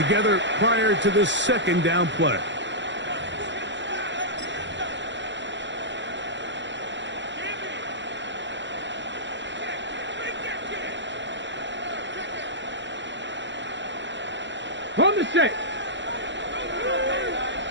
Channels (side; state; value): left; late; 0.53 ms